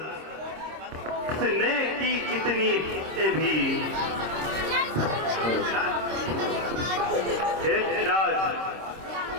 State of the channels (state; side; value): late; left; 26 ms